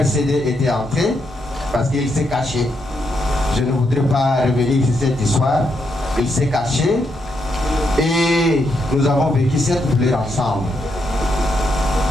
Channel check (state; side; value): normal; both; correlation 0.80